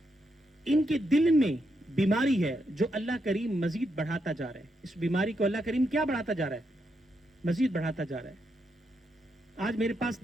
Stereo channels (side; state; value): both; normal; correlation 0.81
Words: ان کے دل میں بیماری ہے جو اللہ کریم مزید بڑھاتا جا رہا ہے. اس بیماری کو اللہ کریم کیا بڑھاتا جا رہا ہے؟ مزید بڑھاتا جا رہا ہے. آج میرے پاس